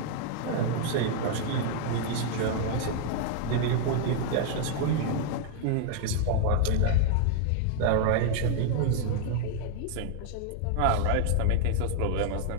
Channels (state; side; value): different; both; correlation 0.00